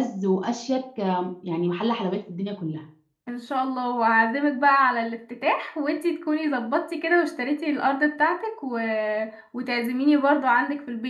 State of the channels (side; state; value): both; identical; correlation 1.00